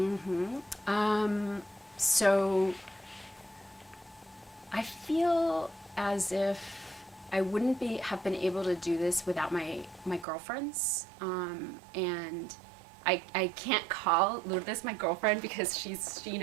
So I feel as if I wouldn't have been able to do this without my girlfriends, and I can't call Lourdes my girlfriend because she's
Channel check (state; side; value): drops out; left; at 10.2 s